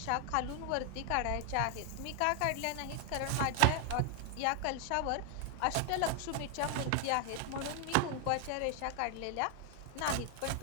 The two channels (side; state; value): both; different; correlation 0.00